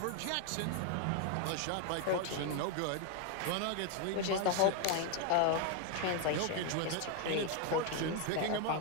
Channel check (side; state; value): both; different; correlation 0.01